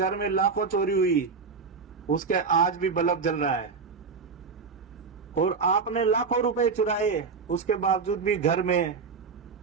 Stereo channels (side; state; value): left; quieter; 5.1 dB